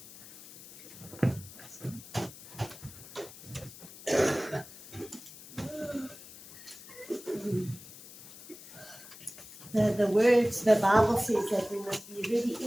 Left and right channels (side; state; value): left; noise; hiss, 17 dB below the sound